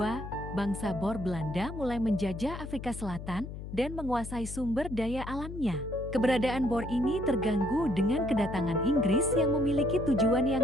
bangsa Boer Belanda mulai menjajah Afrika Selatan dan menguasai sumber daya alamnya. Keberadaan Boer ini terganggu dengan kedatangan Inggris yang memiliki tujuan yang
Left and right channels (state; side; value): noise; left; hum, 9 dB below the sound